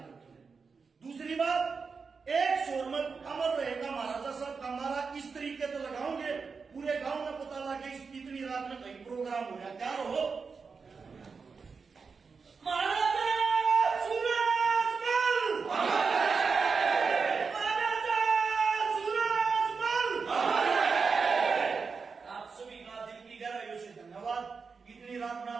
दूसरी बात, एक शोर में अमर रहेगा महाराजा साहब का नारा इस तरीके से लगाओगे, पूरे गांव में पता लगे इतनी रात में कहीं प्रोग्राम हो रहा, क्या हो महाराजा सूरजमल, महाराजा सूरजमल। आप सभी का दिल की गहराइयों से धन्यवाद। इतनी रात में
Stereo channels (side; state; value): left; quieter; 5.1 dB